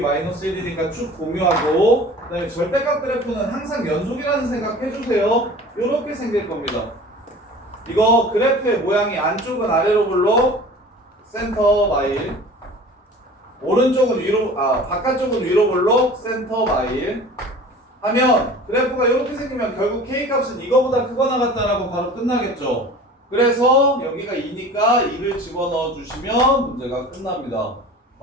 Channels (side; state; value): both; normal; correlation 0.41